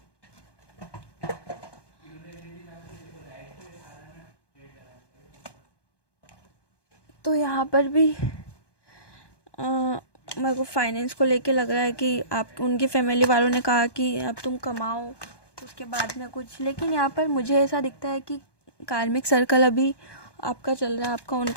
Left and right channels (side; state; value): right; late; 1.2 ms